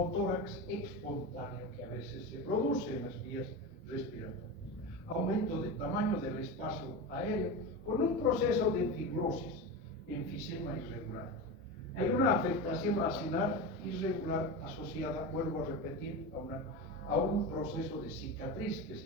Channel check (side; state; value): both; normal; correlation 0.22